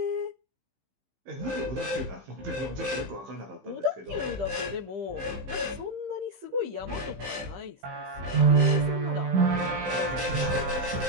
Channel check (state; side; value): late; left; 15 ms